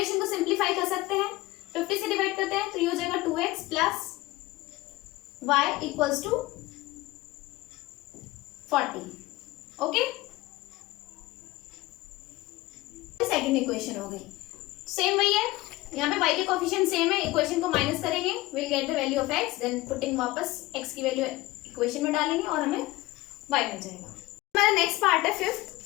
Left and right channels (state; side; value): quieter; right; 19.2 dB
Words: को सिंप्लीफाई कर सकते हैं, 50 से डिवाइड करते हैं तो ये हो जाएगा 2x + y = 40। Okay, second equation हो गई, सेम वही है। यहाँ पे y के कोफिशिएंट सेम है, इक्वेशन को माइनस करेंगे, will get the value of x, then putting वापस x की वैल्यू इक्वेशन में डालेंगे और हमें y मिल जाएगा। हमारा नेक्स्ट पार्ट है fifth,